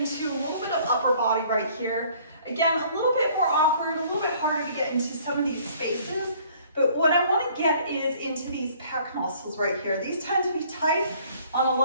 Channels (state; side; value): inverted; both; correlation -0.56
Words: a little bit of upper body right here. Again, a little bit more awkward, a little bit harder to get into some of these spaces, but what I want to get is into these pec muscles right here. These tend to be tight on a